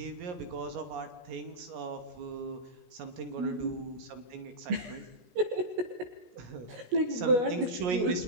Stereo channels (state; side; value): late; left; 17 ms